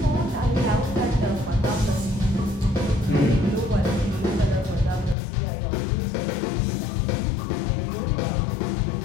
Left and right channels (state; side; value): drops out; right; at 5.2 s